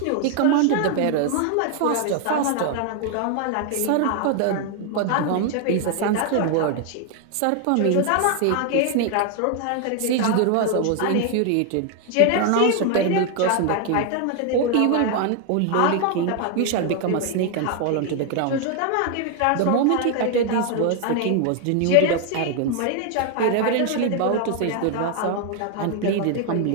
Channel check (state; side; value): different; both; correlation 0.00